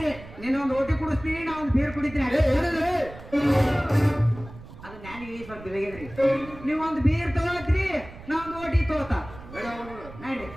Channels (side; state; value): right; noise; rumble, 16 dB below the sound